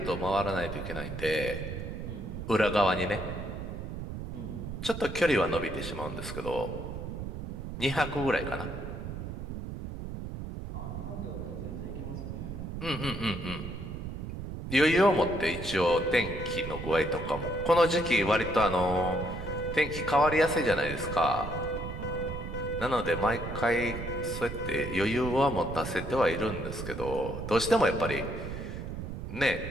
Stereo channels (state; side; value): noise; right; rumble, 7 dB below the sound